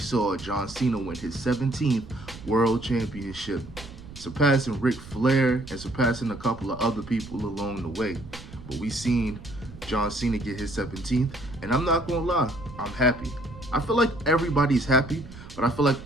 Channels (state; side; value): noise; right; rumble, 16 dB below the sound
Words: John Cena win his 17th World Championship, surpassing Ric Flair and surpassing a couple of other people along the way. But we seen John Cena get his 17th, and I'm not gonna lie, I'm happy. I feel like everybody's happy, but I feel like